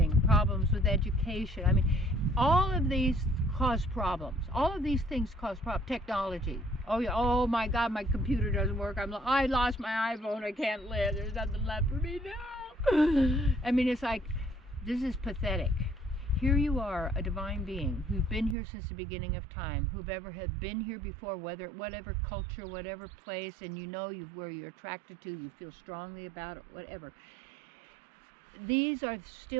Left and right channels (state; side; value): drops out; left; at 18.6 s